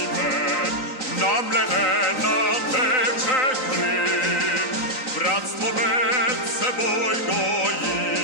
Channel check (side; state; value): right; late; 3.9 ms